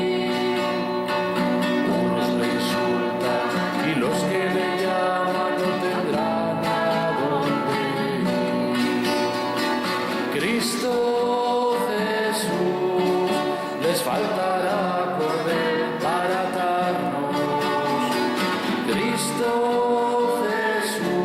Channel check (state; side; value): identical; both; correlation 1.00